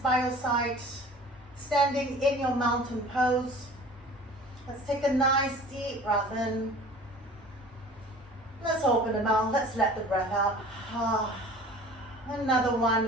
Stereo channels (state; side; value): normal; both; correlation 0.44